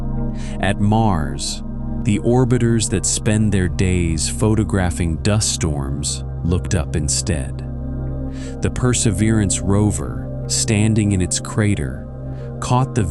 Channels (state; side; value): identical; both; correlation 1.00